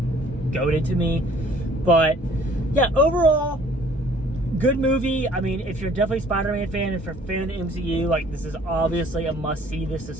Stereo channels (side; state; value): both; normal; correlation 0.55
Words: goated to me. But yeah, overall, good movie. I mean, if you're definitely a Spider-Man fan, if you're a fan of the MCU, like, this is obviously a must-see. This is